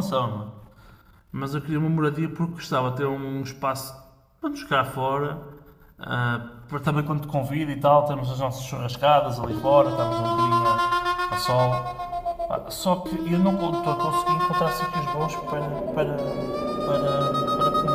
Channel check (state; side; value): identical; both; correlation 1.00